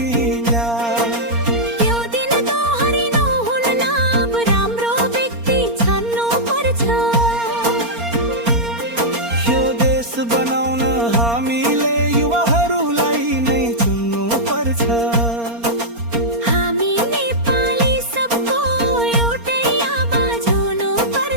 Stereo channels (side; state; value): left; late; 4.3 ms